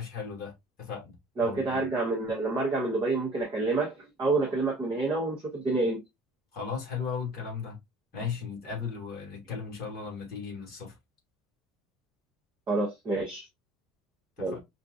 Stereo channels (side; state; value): both; normal; correlation 0.49